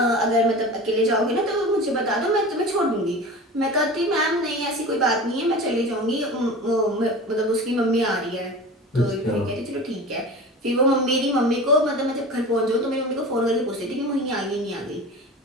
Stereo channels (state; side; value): normal; both; correlation 0.34